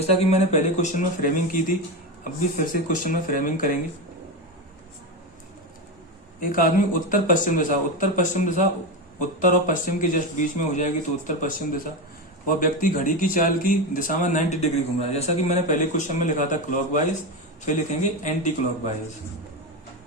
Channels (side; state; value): both; normal; correlation 0.16